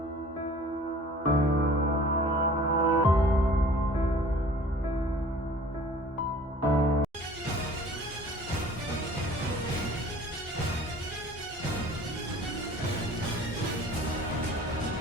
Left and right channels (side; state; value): both; normal; correlation 0.48